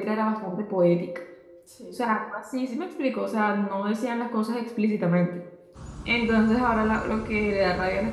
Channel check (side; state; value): both; identical; correlation 1.00